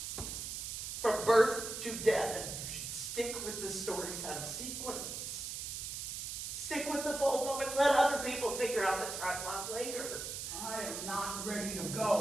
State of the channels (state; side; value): noise; right; hiss, 5 dB below the sound